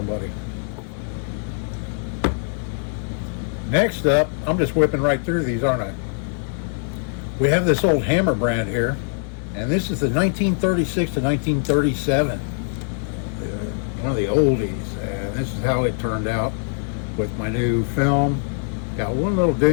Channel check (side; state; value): right; silent; 64 dB below the other